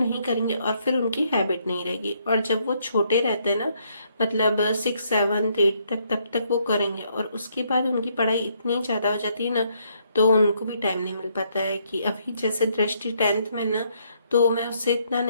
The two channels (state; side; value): inverted; both; correlation -0.72